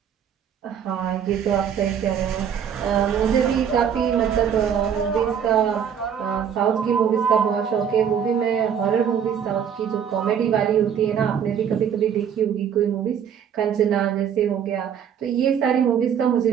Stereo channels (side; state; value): left; quieter; 8.2 dB